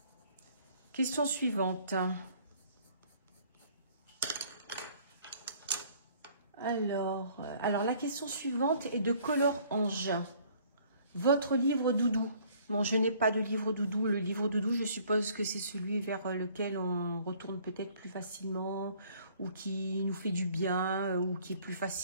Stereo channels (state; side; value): inverted; both; correlation -0.58